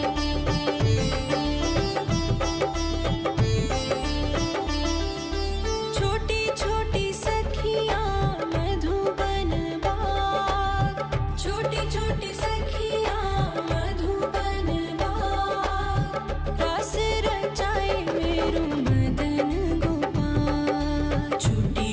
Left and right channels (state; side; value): identical; both; correlation 1.00